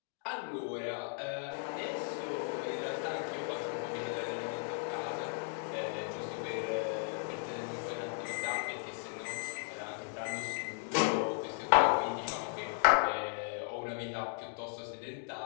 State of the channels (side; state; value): right; silent; 54 dB below the other